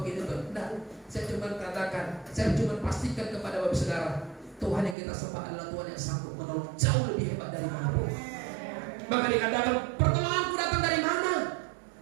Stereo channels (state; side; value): drops out; left; at 5.0 s